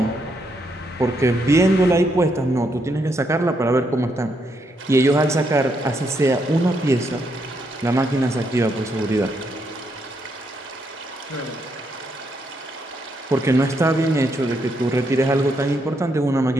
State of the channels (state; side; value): normal; both; correlation 0.77